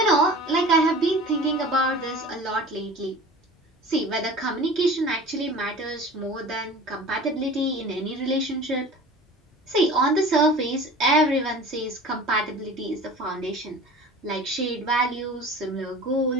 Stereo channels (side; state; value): both; normal; correlation 0.39